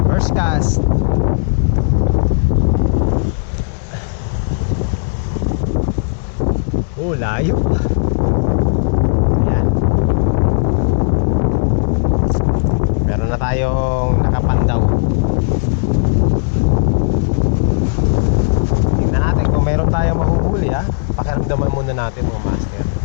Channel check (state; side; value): silent; right; digital silence